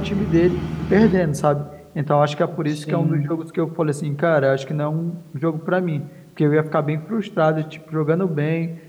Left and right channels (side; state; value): both; identical; correlation 1.00